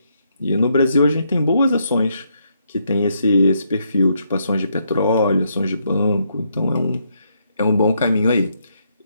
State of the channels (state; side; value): inverted; both; correlation -0.76